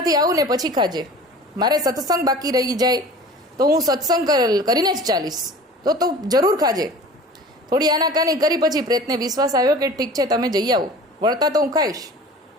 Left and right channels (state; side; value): normal; both; correlation 0.41